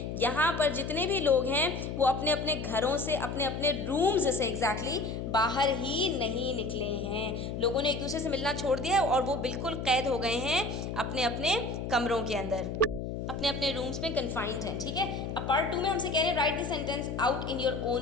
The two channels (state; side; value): noise; left; hum, 5 dB below the sound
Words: यहाँ पर जितने भी लोग हैं वो अपने अपने घरों से, अपने अपने रूम्स से एग्जैक्टली बाहर ही नहीं निकले हैं। लोगों ने एक दूसरे से मिलना छोड़ दिया है और वो बिल्कुल कैद हो गए हैं अपने अपने कमरों के अंदर, अपने अपने रूम्स में कन्फाइंड हैं। ठीक है, अब पार्ट 2 में हमसे कह रहे हैं right the sentence out in your